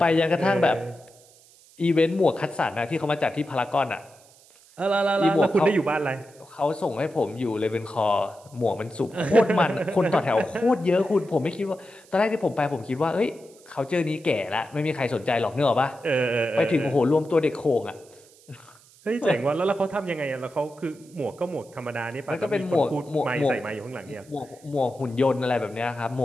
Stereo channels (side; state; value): right; noise; hiss, 26 dB below the sound